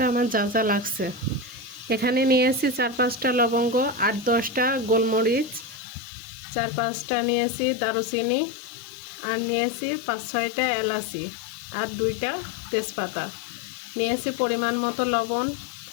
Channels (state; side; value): drops out; right; at 5.8 s